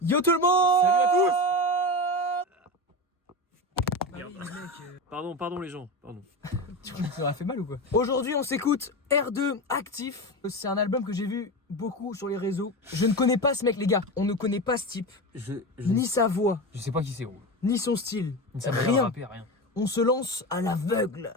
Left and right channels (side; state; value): both; normal; correlation 0.22